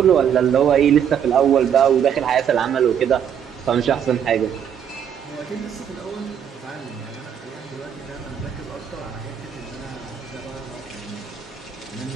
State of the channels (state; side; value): quieter; left; 8.5 dB